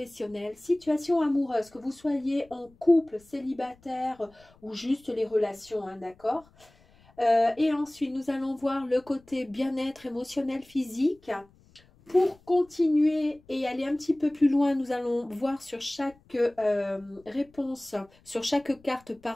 situation amoureuse, que vous soyez en couple, célibataire ou juste les relations, hein, d'accord? Et ensuite, nous allons voir le côté bien-être émotionnel, physique. Pour continuer et aller un petit peu plus loin, nous allons voir sur chaque réponse, sur chaque carte,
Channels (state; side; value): noise; left; rumble, 29 dB below the sound